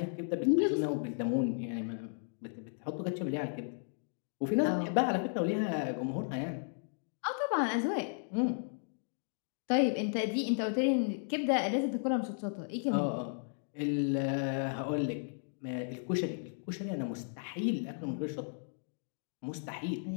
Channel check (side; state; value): right; silent; digital silence